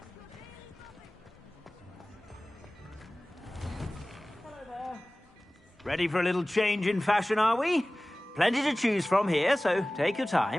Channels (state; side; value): normal; both; correlation 0.98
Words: Ready for a little change in fashion, are we? Plenty to choose from here, so take your